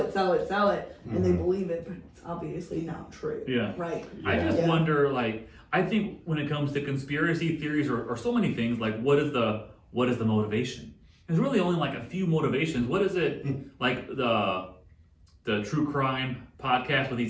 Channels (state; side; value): identical; both; correlation 1.00